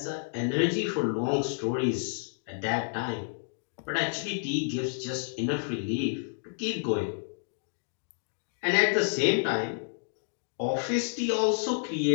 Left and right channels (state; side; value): silent; right; digital silence